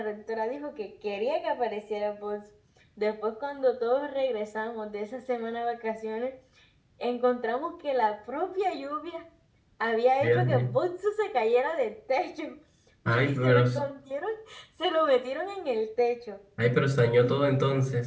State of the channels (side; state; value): both; identical; correlation 1.00